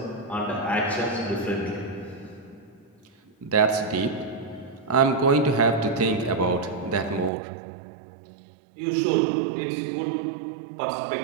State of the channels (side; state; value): left; drops out; at 7.3 s